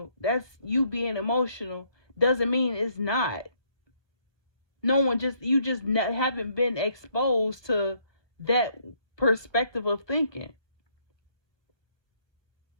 that's you being emotional, doesn't mean it's not. No one just you just haven't been exposed to that perspective of thinking.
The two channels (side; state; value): right; late; 1.4 ms